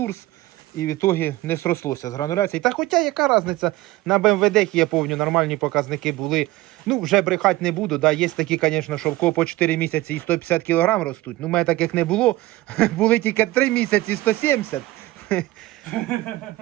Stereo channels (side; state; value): left; quieter; 18.2 dB